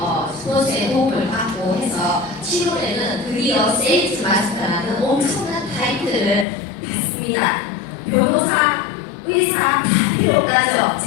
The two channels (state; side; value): drops out; right; at 6.5 s